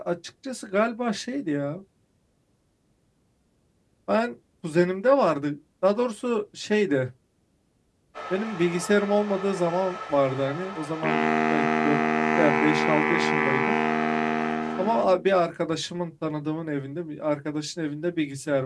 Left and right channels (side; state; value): both; identical; correlation 1.00